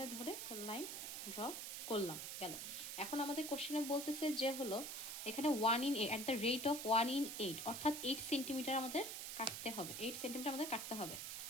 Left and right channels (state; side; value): noise; right; hiss, 5 dB below the sound